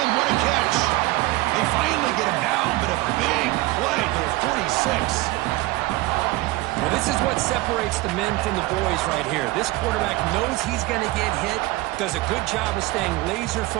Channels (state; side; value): quieter; left; 19.9 dB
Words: What a catch. They finally get him down, but a big play to the 46. Well, this is what separates the men from the boys right here. This quarterback knows he's going to get hit, does a good job of staying laser